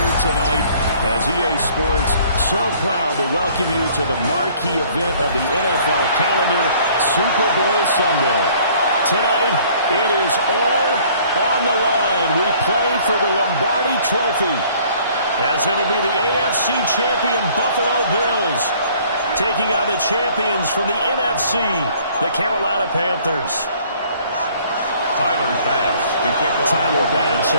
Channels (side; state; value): both; inverted; correlation -0.57